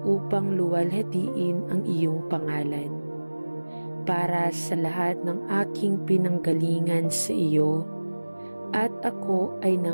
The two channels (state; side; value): inverted; both; correlation -1.00